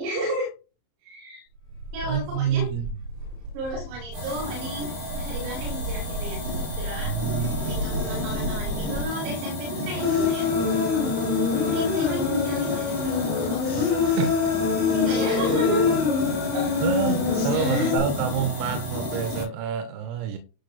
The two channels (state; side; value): late; left; 34 ms